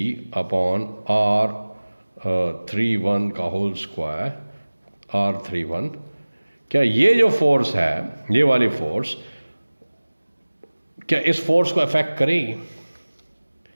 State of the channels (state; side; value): inverted; both; correlation -1.00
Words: upon R31 का होल स्क्वायर R31, क्या ये जो फोर्स है, ये वाली फोर्स, क्या इस फोर्स को अफेक्ट करेगी?